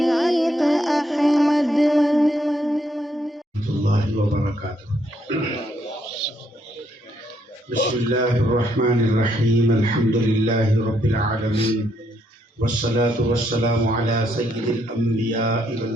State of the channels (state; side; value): normal; both; correlation 0.73